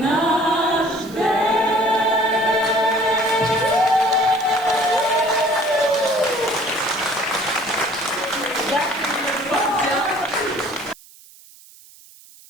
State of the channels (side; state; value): right; noise; hiss, 23 dB below the sound